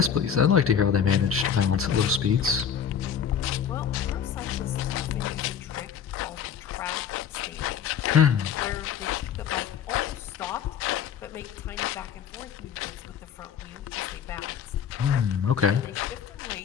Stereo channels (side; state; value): right; quieter; 7.8 dB